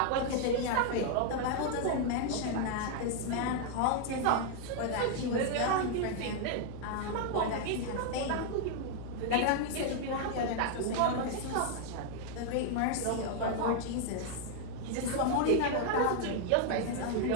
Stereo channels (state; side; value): different; both; correlation 0.00